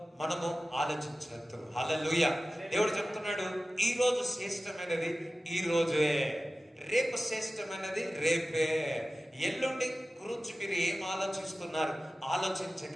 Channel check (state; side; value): normal; both; correlation 0.95